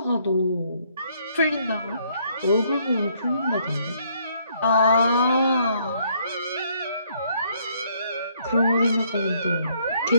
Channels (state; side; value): inverted; both; correlation -0.68